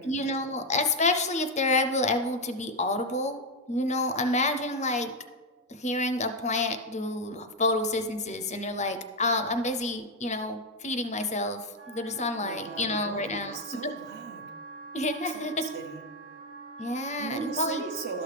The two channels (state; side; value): normal; both; correlation 0.06